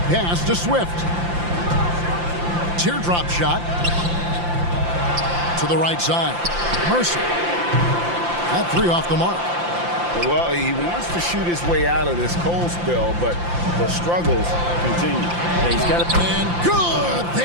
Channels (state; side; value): late; left; 5.8 ms